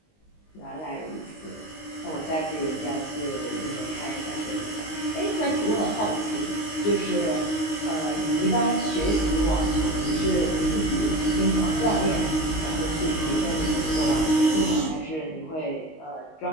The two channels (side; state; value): right; late; 19 ms